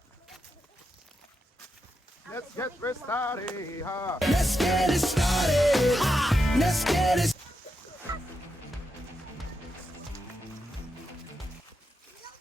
Let's get started, ha. Let's get it started. Let's get it.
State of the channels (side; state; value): both; normal; correlation 0.85